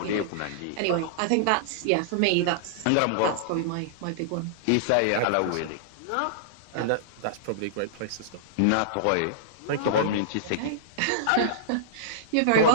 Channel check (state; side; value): different; both; correlation -0.02